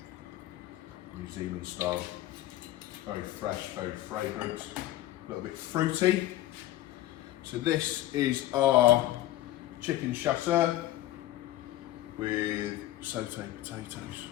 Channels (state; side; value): quieter; right; 14.7 dB